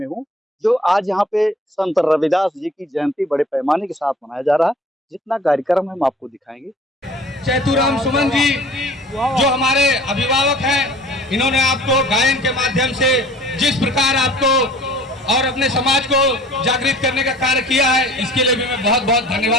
हूं, जो आज यहाँ पे संत रविदास जी की जयंती बड़े पैमाने के साथ मनाया जा रहा है। जितना कार्यक्रम हम आपको दिखाएंगे। चैतुराम सुमन जी जो हमारे अभिभावक हैं, इन्होंने आपको गायन के माध्यम से जिस प्रकार आपको और अपने समाज को जागृत करने का कार्य किया है, इसके लिए भी मैं बहुत बहुत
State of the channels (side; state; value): both; normal; correlation 0.48